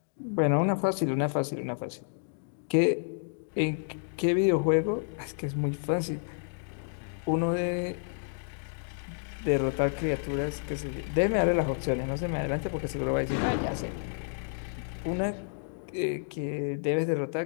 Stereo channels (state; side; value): silent; right; digital silence